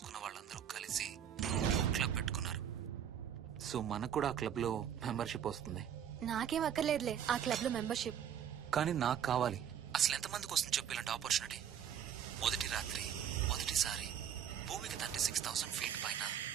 వాళ్ళందరూ కలిసి క్లబ్ పెట్టుకున్నారు. సో మనకు కూడా ఆ క్లబ్ లో మెంబర్షిప్ వస్తుంది. నాకేం అక్కర్లేదులే ఆ క్లబ్ లో మెంబర్షిప్. కానీ నాకు కావాలి. అసలు ఎంతమందికి వస్తుంది చెప్పు ఇలాంటి ఆపర్చునిటీ? మొదటి రాత్రి, మొదటిసారి భూమికి 36,000 ఫీట్ పైన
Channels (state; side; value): quieter; left; 9.1 dB